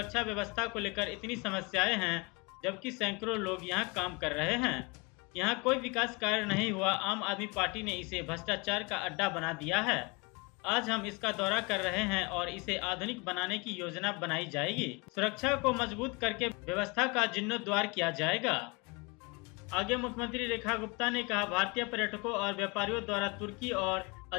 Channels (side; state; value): right; quieter; 28.4 dB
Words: व्यवस्था को लेकर इतनी समस्याएं हैं, जबकि सैकड़ों लोग यहाँ काम कर रहे हैं। यहाँ कोई विकास कार्य नहीं हुआ। आम आदमी पार्टी ने इसे भ्रष्टाचार का अड्डा बना दिया है। आज हम इसका दौरा कर रहे हैं और इसे आधुनिक बनाने की योजना बनाई जाएगी। सुरक्षा को मजबूत करके व्यवस्था का जीर्णोद्धार किया जाएगा। आगे मुख्यमंत्री रेखा गुप्ता ने कहा, भारतीय पर्यटकों और व्यापारियों द्वारा तुर्की और